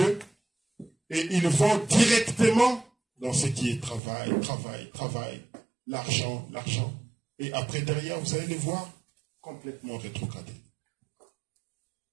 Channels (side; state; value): left; drops out; at 4.0 s